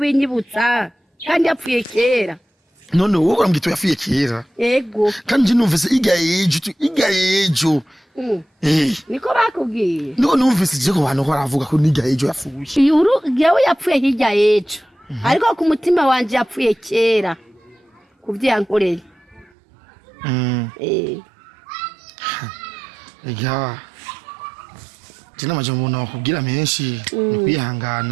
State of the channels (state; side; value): drops out; left; at 19.5 s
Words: kandi yapfuye kera none wowe urambwita yapfuye kera yego kandi numvise igayejo niko bakubwiye niko numvise je ko bantu baravuga ko nigayejo yapfuye yewe yapfuye hirya yejo ariko ku mutima wanjye yapfuye kera kuvyankoreye ega jina majambo nakubwira menshi